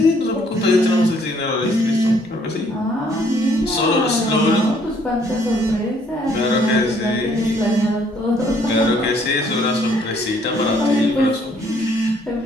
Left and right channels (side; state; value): both; normal; correlation 0.64